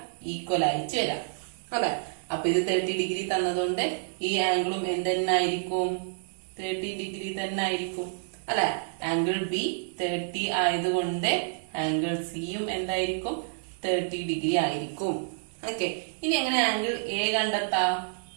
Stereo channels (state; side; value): silent; left; digital silence